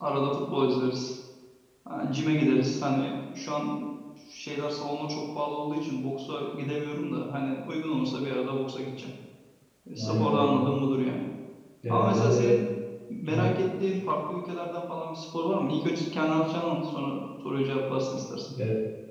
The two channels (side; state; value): both; identical; correlation 1.00